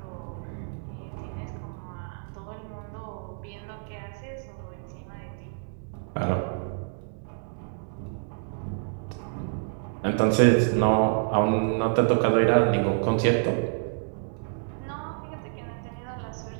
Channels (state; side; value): silent; left; digital silence